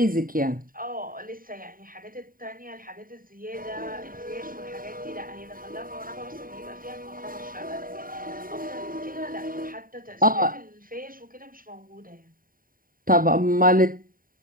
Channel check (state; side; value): late; left; 0.41 ms